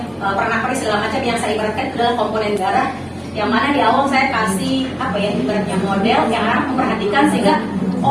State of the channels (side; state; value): both; identical; correlation 1.00